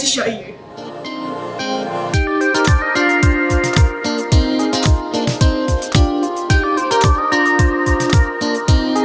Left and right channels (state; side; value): identical; both; correlation 1.00